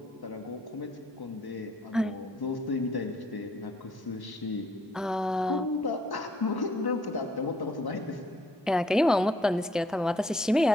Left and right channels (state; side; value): normal; both; correlation 0.66